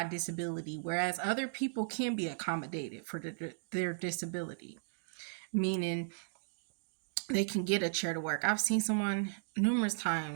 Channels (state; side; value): silent; left; digital silence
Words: disability, whereas other people can be accommodated for their disability. Meaning they can get a chair to work. I've seen someone numerous